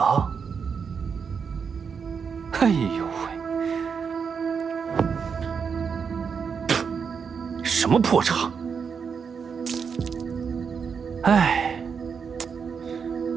哎呦喂，什么破茶！哎，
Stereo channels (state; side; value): quieter; left; 6.2 dB